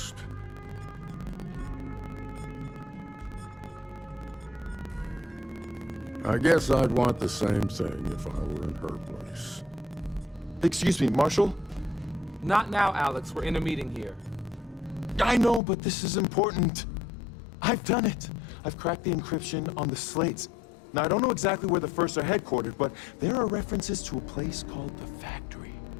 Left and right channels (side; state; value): right; drops out; at 15.6 s